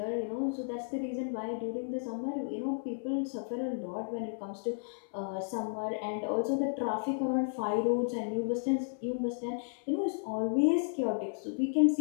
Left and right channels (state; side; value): silent; right; 56 dB below the other